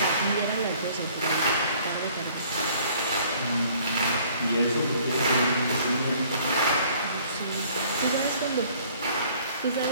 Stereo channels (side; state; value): both; inverted; correlation -0.57